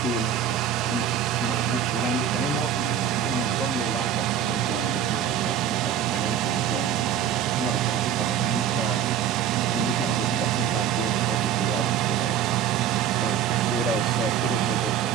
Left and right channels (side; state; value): left; quieter; 8.9 dB